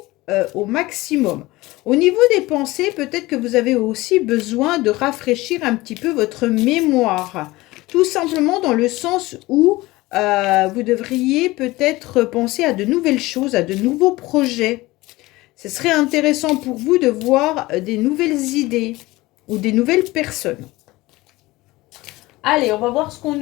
au maximum. Au niveau des pensées, peut-être que vous avez aussi besoin de rafraîchir un petit peu votre mémoire. Tout simplement dans le sens où vous devriez peut-être penser à de nouvelles choses, à de nouveaux projets. Ce serait intéressant pour vous de voir des nouvelles idées ou des nouvelles personnes. Allez, on va voir ce qu'on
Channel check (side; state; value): right; quieter; 19.8 dB